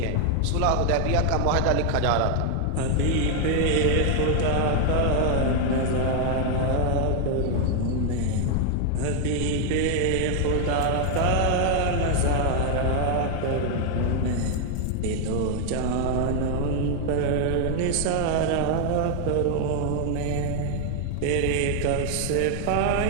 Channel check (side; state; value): both; different; correlation 0.00